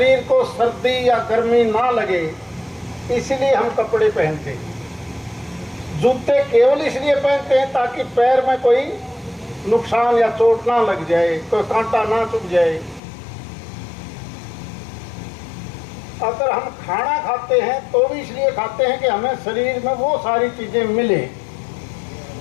को सर्दी या गर्मी ना लगे, इसलिए हम कपड़े पहनते हैं। जूते केवल इसलिए पहनते हैं ताकि पैर में कोई नुकसान या चोट ना लग जाए, कोई कांटा ना चुभ जाए। अगर हम खाना खाते हैं तो भी इसलिए खाते हैं कि हमें शरीर में वो सारी चीजें मिले।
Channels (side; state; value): right; drops out; at 13.0 s